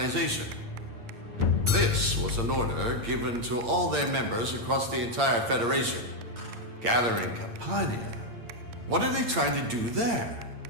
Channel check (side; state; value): left; late; 8.7 ms